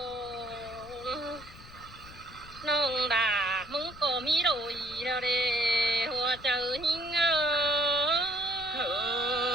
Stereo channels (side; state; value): left; noise; rumble, 18 dB below the sound